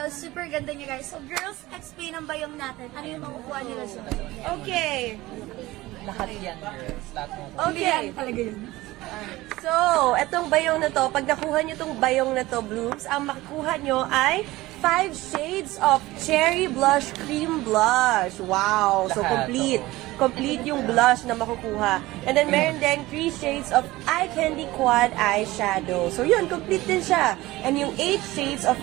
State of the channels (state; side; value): quieter; left; 18.6 dB